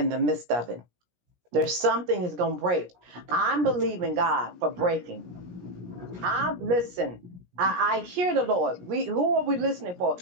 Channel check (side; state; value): left; late; 17 ms